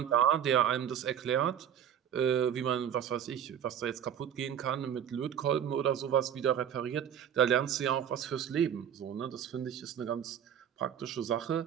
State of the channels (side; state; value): left; quieter; 9.2 dB